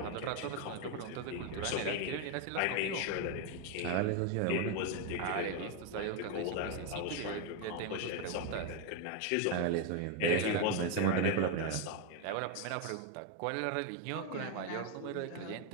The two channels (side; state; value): both; different; correlation 0.01